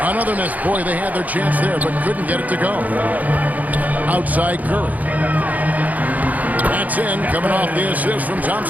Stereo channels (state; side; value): late; left; 0.078 ms